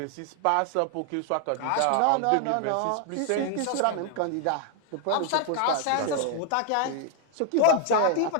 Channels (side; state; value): both; different; correlation 0.00